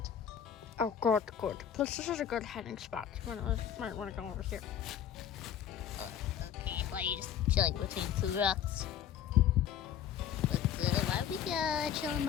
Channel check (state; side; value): quieter; right; 9.4 dB